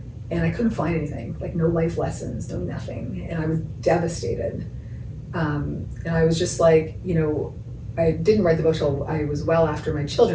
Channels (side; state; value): both; identical; correlation 1.00